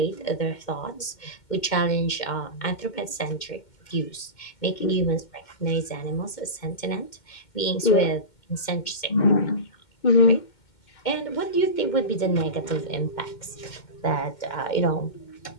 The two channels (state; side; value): late; right; 2.1 ms